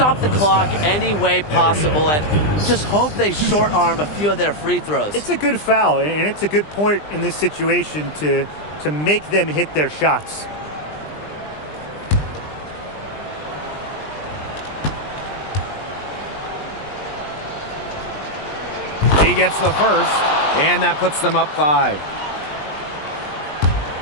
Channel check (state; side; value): late; right; 20 ms